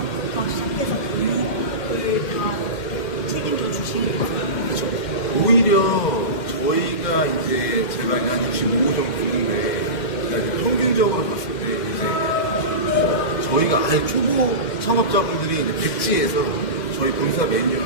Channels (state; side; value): late; right; 2.1 ms